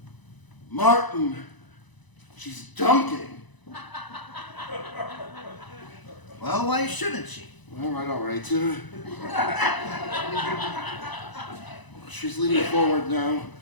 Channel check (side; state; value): right; late; 1.0 ms